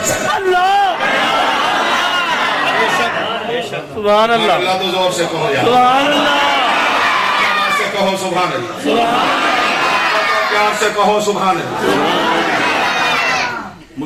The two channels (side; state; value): both; identical; correlation 1.00